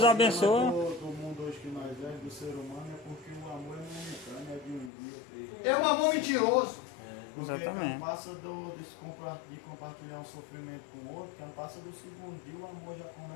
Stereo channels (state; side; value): drops out; right; at 4.9 s